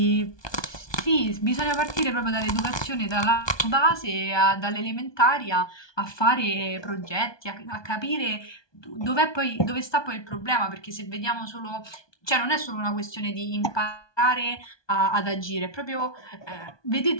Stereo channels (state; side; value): late; right; 1.2 ms